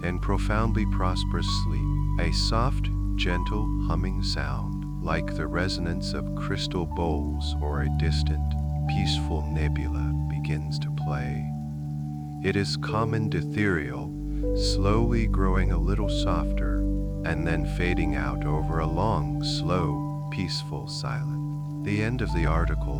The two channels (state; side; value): identical; both; correlation 1.00